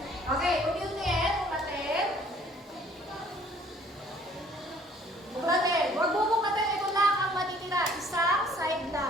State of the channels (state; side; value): normal; both; correlation 0.58